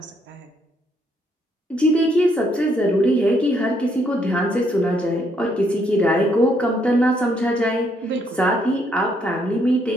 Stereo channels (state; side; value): normal; both; correlation 0.72